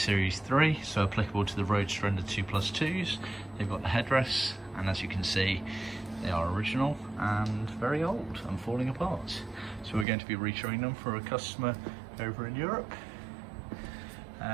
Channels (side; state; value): left; drops out; at 10.1 s